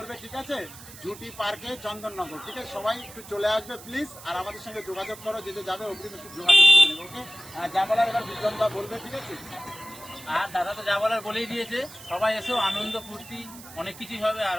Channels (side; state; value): right; noise; hiss, 17 dB below the sound